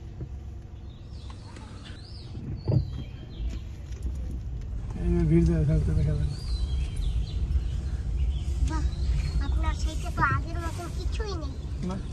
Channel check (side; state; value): both; identical; correlation 1.00